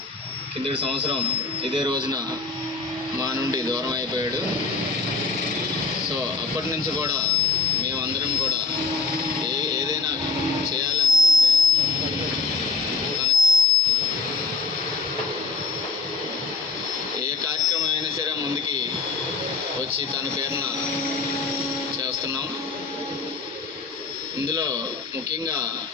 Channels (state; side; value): quieter; right; 4.3 dB